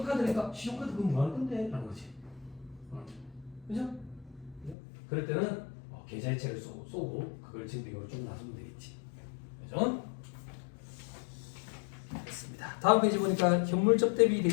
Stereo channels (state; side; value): drops out; right; at 4.8 s